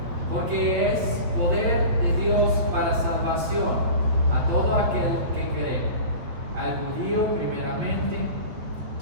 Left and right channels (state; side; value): late; left; 8.5 ms